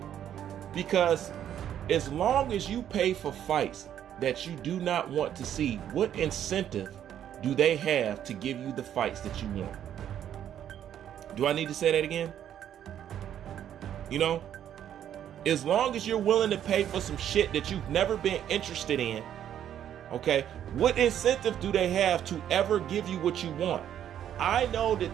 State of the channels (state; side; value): quieter; left; 10.2 dB